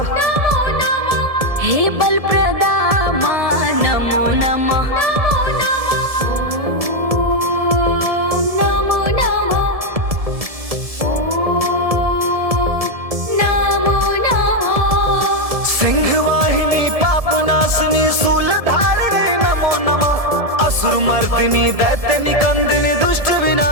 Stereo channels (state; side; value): late; left; 1.7 ms